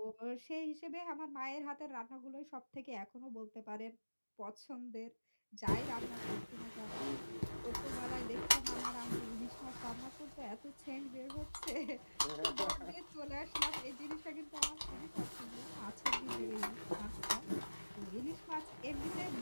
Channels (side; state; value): both; inverted; correlation -1.00